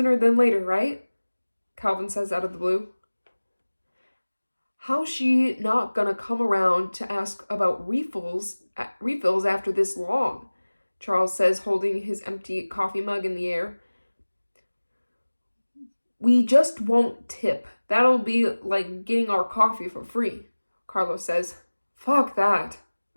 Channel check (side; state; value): both; inverted; correlation -1.00